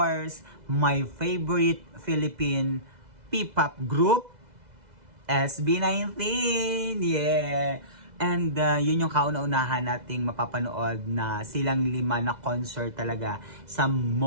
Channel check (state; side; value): late; left; 2.0 ms